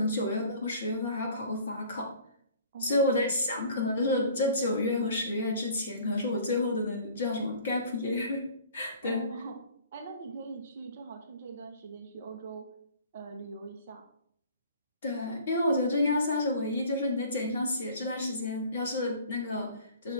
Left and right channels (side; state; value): both; inverted; correlation -0.49